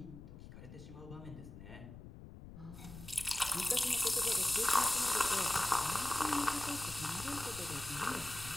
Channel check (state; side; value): noise; left; rumble, 14 dB below the sound